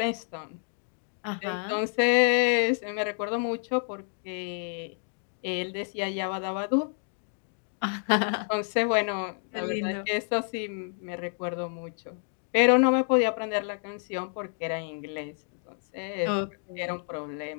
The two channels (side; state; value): right; silent; 56 dB below the other